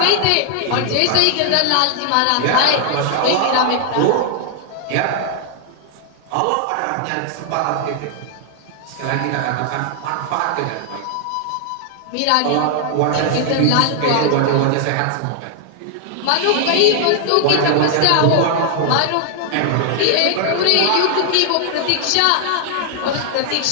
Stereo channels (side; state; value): both; different; correlation 0.00